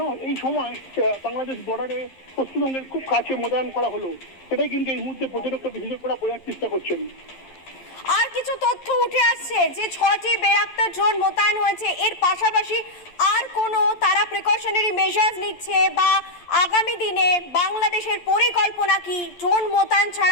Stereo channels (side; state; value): right; late; 11 ms